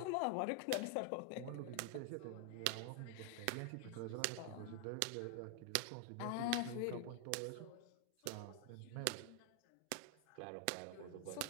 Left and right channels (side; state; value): both; different; correlation 0.00